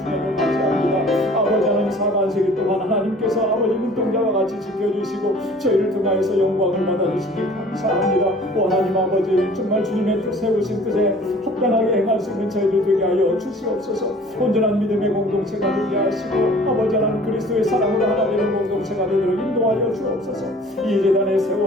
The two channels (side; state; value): both; normal; correlation 0.49